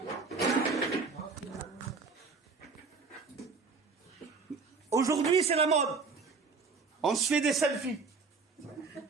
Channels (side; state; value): left; quieter; 4.5 dB